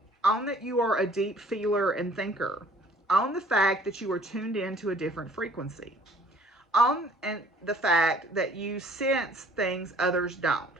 Own that you are a deep feeler and thinker. Own the fact that you are tuned into a different frequency. Own and the fact that you sense things others don't.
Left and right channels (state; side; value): normal; both; correlation 0.56